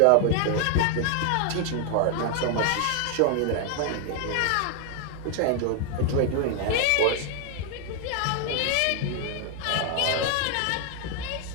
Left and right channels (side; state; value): both; different; correlation 0.00